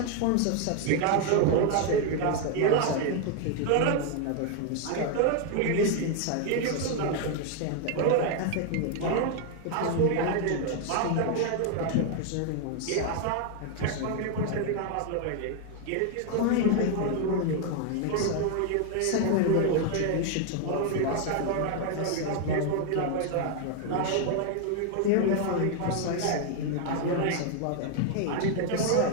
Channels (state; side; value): different; both; correlation 0.00